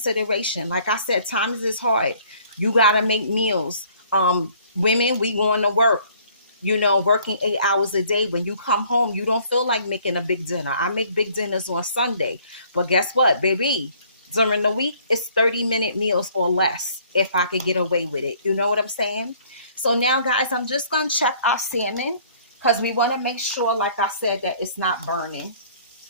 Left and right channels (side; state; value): both; inverted; correlation -0.58